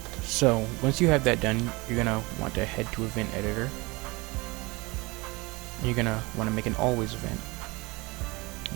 So once you have that done, you're gonna want to head to event editor. You're gonna want to make an always event.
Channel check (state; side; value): quieter; left; 24.4 dB